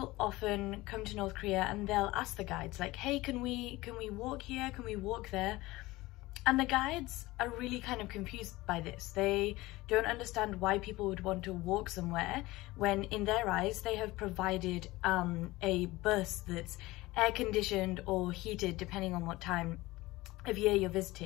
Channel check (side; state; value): right; quieter; 19.6 dB